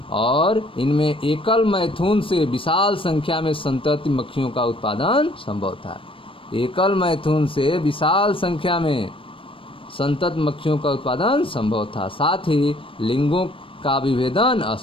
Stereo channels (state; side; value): late; right; 0.25 ms